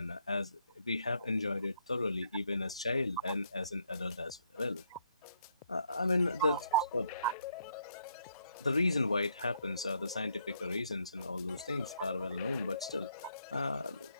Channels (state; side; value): inverted; both; correlation -0.72